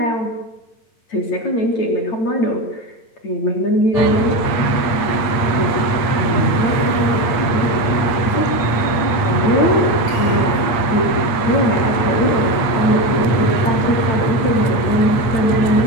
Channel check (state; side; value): late; right; 8.5 ms